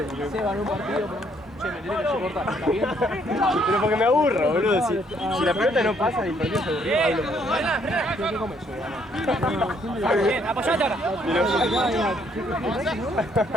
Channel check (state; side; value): normal; both; correlation 0.68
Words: Porque... Se ganó un partido, pero... Che, me tenés que soportar, ¿está bien? Pero porque me aburro, boludo. Si la pelota no pasa y el partido se aburrió, hablo. ¿Qué comes yo? Bien, apoyate ahora.